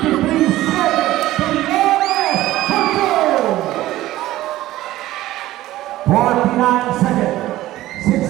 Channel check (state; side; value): quieter; left; 15.6 dB